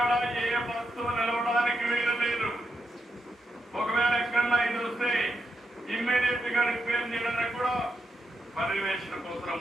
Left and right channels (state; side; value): normal; both; correlation 0.84